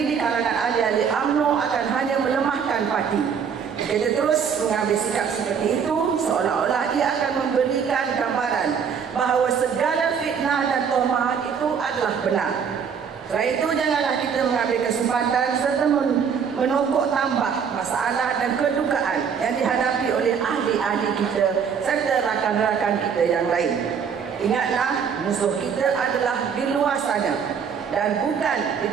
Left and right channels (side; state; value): left; quieter; 6.9 dB